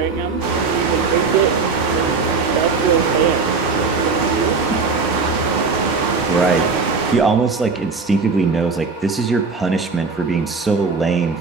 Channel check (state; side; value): quieter; left; 4.6 dB